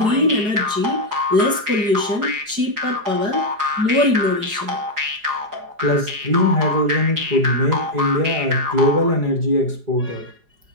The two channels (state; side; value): late; left; 4.8 ms